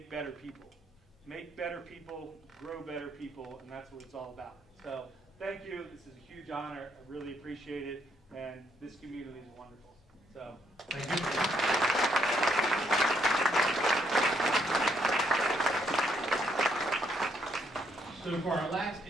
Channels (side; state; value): both; normal; correlation 0.73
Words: better people. Make better people, grow better people, and that's what it's all about. So thank you. This is a huge honor. I really appreciate it, and this community is wonderful. So Thank you. So for our last